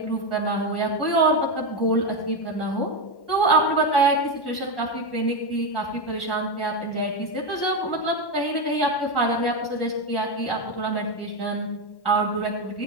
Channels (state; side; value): late; right; 1.1 ms